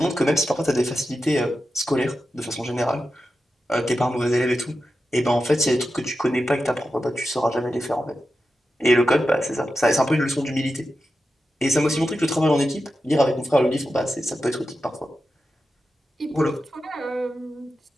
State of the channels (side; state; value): both; normal; correlation 0.91